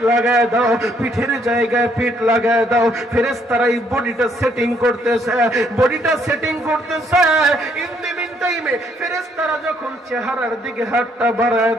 লাগায় দাও, পিঠের জায়গায় পিঠ লাগায় দাও। ফেরেশতারা এই বডিটা সেটিং করতেছে, বডিটা সেটিং করতেছে। ইন দি মিন টাইমে ফেরেশতারা যখন চেহারার দিকে হাতটা বাড়ায়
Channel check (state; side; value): normal; both; correlation 0.69